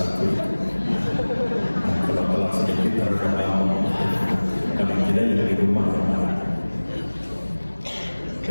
Nah, kalau telah sedikit harus kadang tidak ya di rumah.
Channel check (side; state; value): both; inverted; correlation -1.00